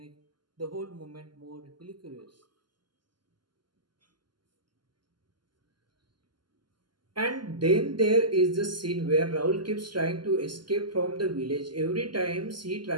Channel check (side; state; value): left; late; 0.71 ms